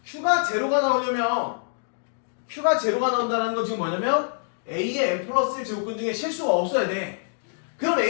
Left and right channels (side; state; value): right; silent; digital silence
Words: Q가 제로가 나온다는 건 지금 뭐냐면 A의 N 플러스 1 제곱근 중에 실수가 없어야 돼. 그럼